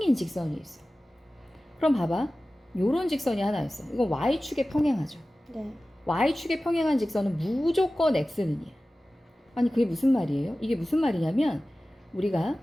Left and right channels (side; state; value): both; normal; correlation 0.96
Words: 직선이 있어. 그럼 봐봐. 요런 직선이 하나 있어. 이건 Y축에 평행하죠. 네. Y축에 평행한 직선은 무조건 X는 2야. 아니 그게 무슨 말이에요? 이게 무슨 말이냐면 우리가